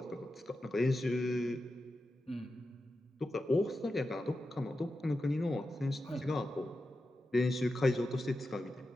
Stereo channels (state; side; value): normal; both; correlation 0.91